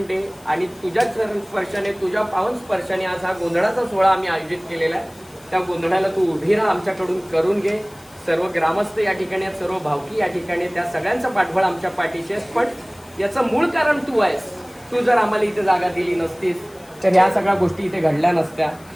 दे. आणि तुझ्या चरण स्पर्शाने, तुझ्या पावन स्पर्शाने आज हा गोंधळाचा सोहळा आम्ही आयोजित केलेला आहे. त्या गोंधळाला तू उभी राहा, आमच्याकडून करून घे. सर्व ग्रामस्थ या ठिकाणी आहेत, सर्व भावकी या ठिकाणी, त्या सगळ्यांचा पाठबळ आमच्या पाठीशी आहेस. पण याचं मूळ कारण तू आहेस. तू जर आम्हाला इथे जागा दिली नसतीस तर ह्या सगळ्या गोष्टी इथे घडल्या नसत्या.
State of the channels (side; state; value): left; noise; hiss, 25 dB below the sound